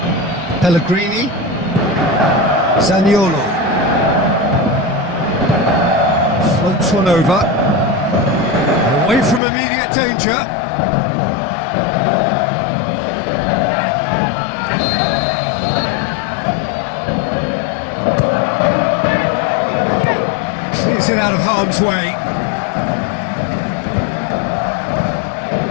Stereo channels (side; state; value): right; drops out; at 9.4 s